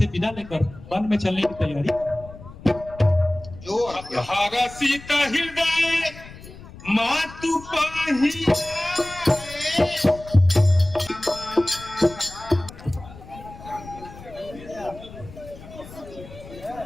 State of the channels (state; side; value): noise; left; rumble, 17 dB below the sound